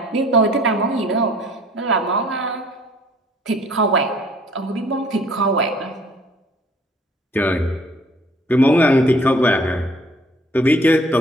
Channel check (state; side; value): normal; both; correlation 0.57